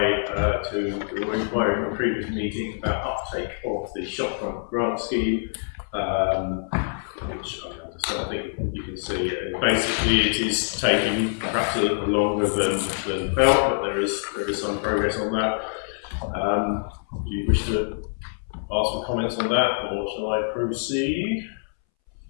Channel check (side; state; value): right; silent; 62 dB below the other